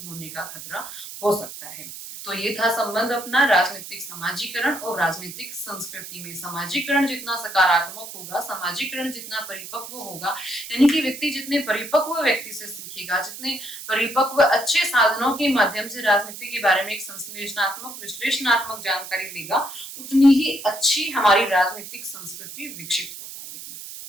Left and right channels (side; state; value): right; noise; hiss, 12 dB below the sound